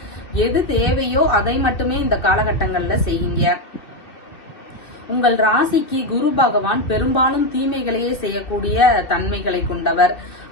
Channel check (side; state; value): right; late; 2.6 ms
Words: எது தேவையோ அதை மட்டுமே இந்த காலகட்டங்கள்ல செய்யுங்க. உங்கள் ராசிக்கு குரு பகவான் பெரும்பாலும் தீமைகளையே செய்யக்கூடிய தன்மைகளை கொண்டவர்.